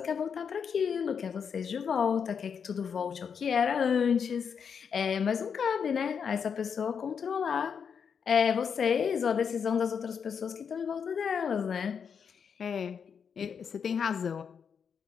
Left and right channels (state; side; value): quieter; right; 6.8 dB